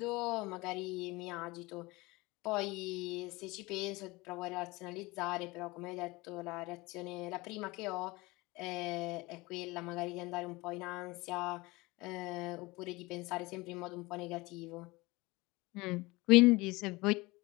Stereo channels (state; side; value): quieter; right; 22.7 dB